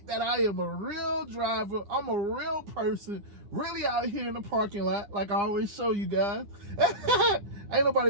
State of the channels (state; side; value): late; left; 9.9 ms